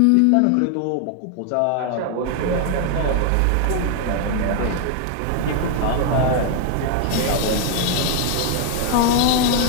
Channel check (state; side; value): different; both; correlation 0.00